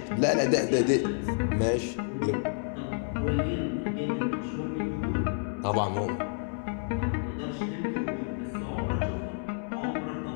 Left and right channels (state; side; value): silent; right; 58 dB below the other